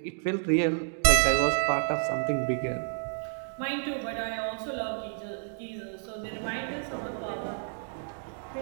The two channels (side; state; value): left; silent; digital silence